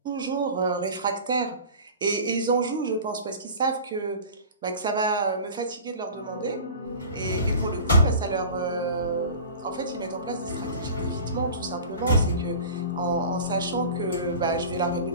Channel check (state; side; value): inverted; both; correlation -0.38